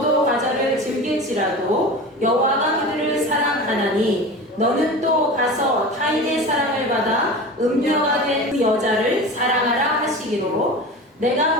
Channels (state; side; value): normal; both; correlation 0.32